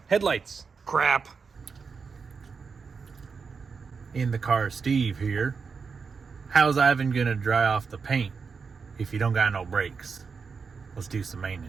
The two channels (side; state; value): left; quieter; 5.3 dB